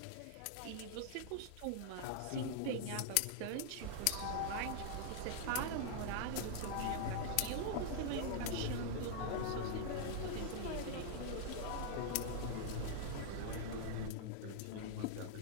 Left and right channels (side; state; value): both; different; correlation -0.01